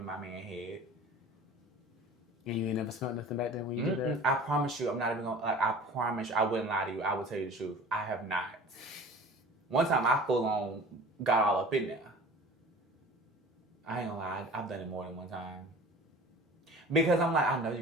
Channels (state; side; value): normal; both; correlation 0.42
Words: my man head. And you ain't never smelled nothing back then when you did that? I promise you, I'm not even gonna, like, I promise you, I wouldn't lie to you. I will tell you the truth. I have not. One time I full on got all up in there. I ain't gonna lie, I've done it more than one time. Because I'm like, I know you're